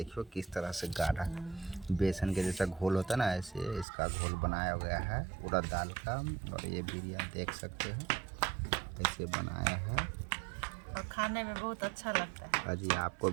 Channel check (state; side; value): drops out; left; at 3.9 s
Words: किस तरह से गाढ़ा बेसन के जैसा घोल होता है ना, ऐसे इसका घोल बनाया गया है उड़द दाल का। और ये बिरयानी देख सकते हो ऐसे बनाया है। और खाने में बहुत अच्छा लगता है। अजी आपको